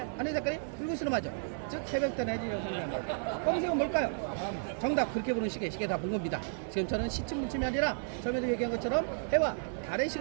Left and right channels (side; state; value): left; silent; digital silence